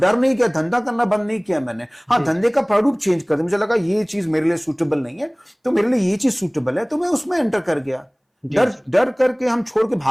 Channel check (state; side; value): identical; both; correlation 1.00